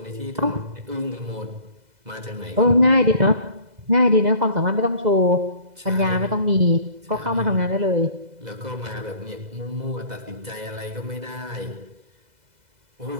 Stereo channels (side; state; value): left; late; 2.0 ms